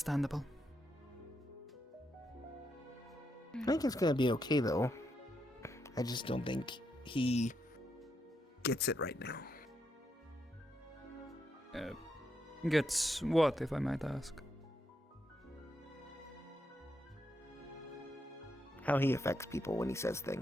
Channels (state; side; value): normal; both; correlation 0.81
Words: I think it's gonna be okay though. I just don't think he gets it right now. Gets what, if I might ask? How he affects people when he says